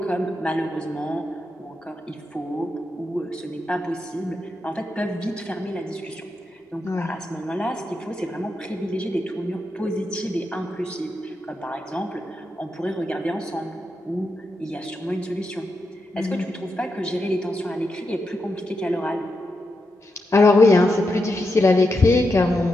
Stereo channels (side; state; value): both; normal; correlation 0.86